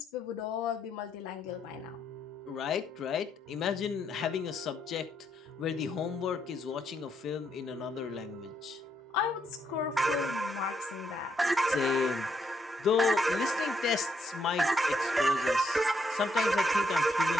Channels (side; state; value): both; normal; correlation 0.76